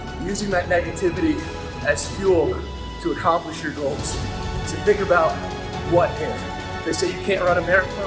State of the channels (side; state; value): both; identical; correlation 1.00